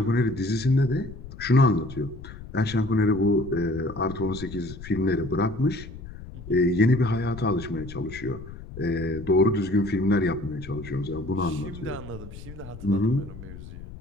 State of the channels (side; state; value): left; noise; rumble, 14 dB below the sound